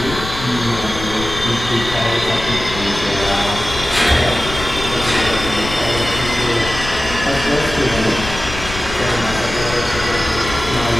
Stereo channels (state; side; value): noise; left; rumble, 9 dB below the sound